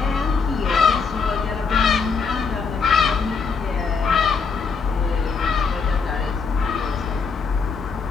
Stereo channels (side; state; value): right; quieter; 5.2 dB